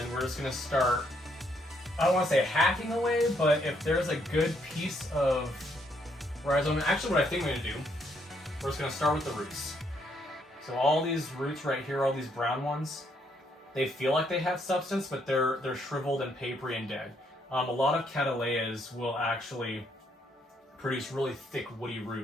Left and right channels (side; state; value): both; normal; correlation 0.72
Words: we're just going to start, I don't want to say hacking away, but if there's a good piece of rhizome, actually what I think I'm going to do, we're just going to start with the roots. So all these roots right here, all these brown ones, they feel like they have substance, but they're shriveled and papery and dead. A lot of cattleyas will actually produce really thick woody